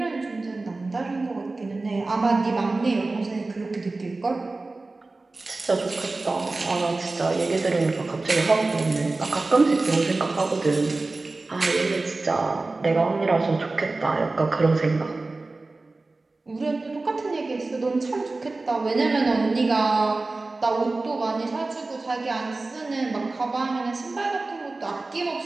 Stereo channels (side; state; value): left; quieter; 3.3 dB